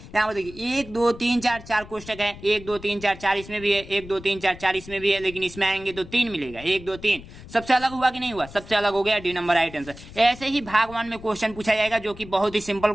यहाँ पर देखिए 1 2 3 4 4 कोष्टक है, 1 2 3 4 4 इसमें भी है, 1 2 3 4 4 इसमें भी है, लेकिन इसमें आएंगे तो 3 मिलेगा, 1 2 3। सबसे अलग हुआ कि नहीं हुआ? सबसे अलग हो गया, डी नंबर राइट आंसर। ऐसे ही भाग 1 में क्वेश्चन पूछा जाएगा जो कि बहुत ही सिंपल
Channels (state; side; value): noise; left; rumble, 17 dB below the sound